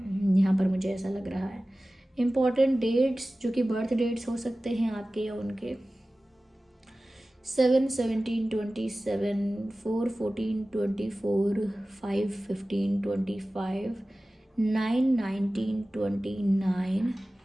पर मुझे ऐसा लग रहा है। इम्पॉर्टेंट डेट्स जो कि बर्थ डेट्स हो सकते हैं आपके या उनके, 7, 17, 27, 4, 14, 24, 5, 15, 25, 9, 19, 29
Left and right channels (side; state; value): both; normal; correlation 0.96